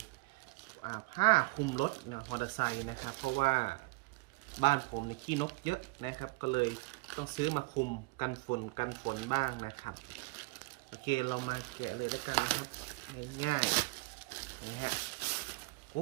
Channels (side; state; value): left; quieter; 25.9 dB